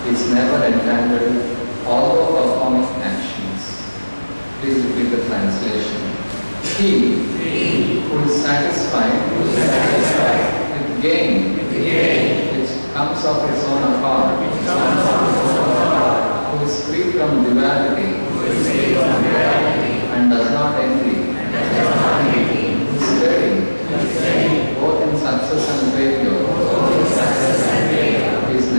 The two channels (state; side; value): inverted; both; correlation -1.00